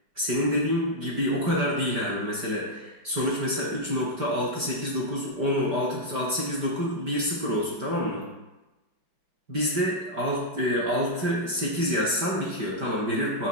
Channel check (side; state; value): left; late; 5.1 ms